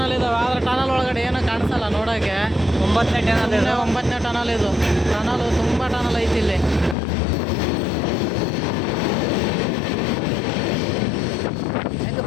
ಇದಾವೆ, ಆದರೆ ಟನಲ್ ಒಳಗಡೆ ಏನೋ ಕಾಣಿಸಲ್ಲ ನೋಡೋಕ್ಕೆ. 9ನೇ ಟನಲ್ 9ನೇ ಟನಲ್ ಇದು. ಟನಲು ತುಂಬ ಟನಲ್ ಐತಿ ಇಲ್ಲಿ. ಹೆಂಗೆ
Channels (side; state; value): right; drops out; at 7.0 s